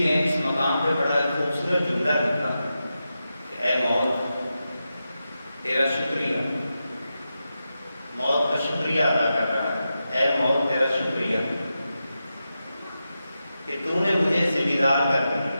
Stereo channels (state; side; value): inverted; both; correlation -0.90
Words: اس مقام پہ بڑا خوبصورت جملہ لکھا کہ اے موت تیرا شکریہ، موت کا شکریہ ادا کر رہا ہے، اے موت تیرا شکریہ کہ تو نے مجھے ذمہ دار کر دیا،